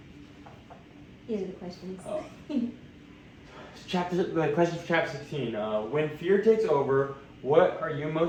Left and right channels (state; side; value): identical; both; correlation 1.00